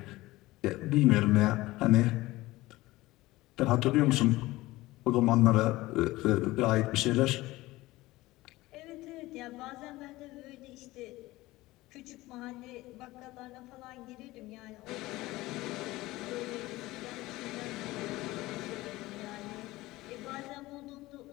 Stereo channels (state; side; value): quieter; right; 18.8 dB